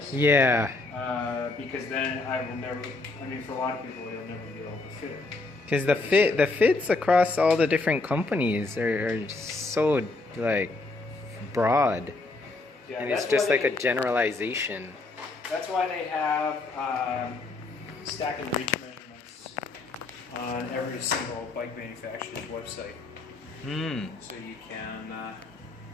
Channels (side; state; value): right; quieter; 3.3 dB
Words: Yeah. Because then I will never, I mean, for a lot of people, they'll never be able to fit it. Because the fits across all the different companies are so like broad. Yeah, and it's just like a generalization. That's why they have stack and reach measurements on every single bike manufacturer's website. So you can,